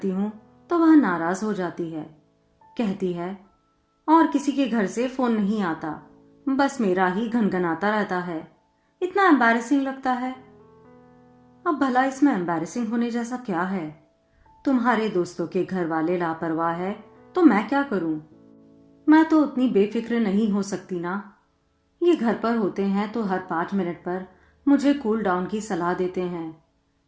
हूँ तो वह नाराज हो जाती है। कहती है और किसी के घर से फोन नहीं आता, बस मेरा ही घनघनाता रहता है। इतना एम्बैरेसिंग लगता है। अब भला इसमें एम्बैरेसिंग होने जैसा क्या है? तुम्हारे दोस्तों के घर वाले लापरवाह है तो मैं क्या करूं? मैं तो उतनी बेफिक्र नहीं हो सकती ना। ये घर पर होते हैं तो हर 5 मिनट पर मुझे कूल डाउन की सलाह देते हैं,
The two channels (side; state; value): both; identical; correlation 1.00